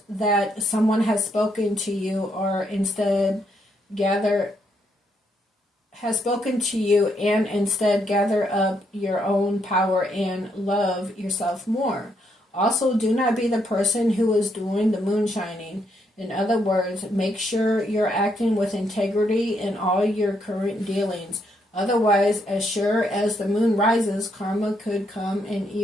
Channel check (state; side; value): normal; both; correlation 0.75